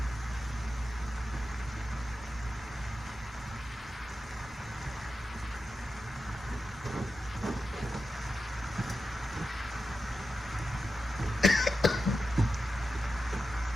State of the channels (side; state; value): both; normal; correlation 0.90